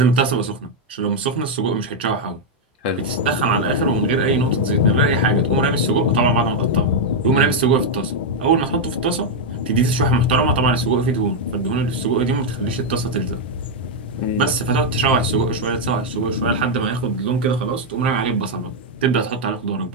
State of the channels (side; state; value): both; normal; correlation -0.01